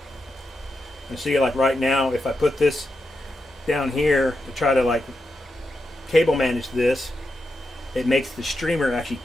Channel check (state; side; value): normal; both; correlation 0.87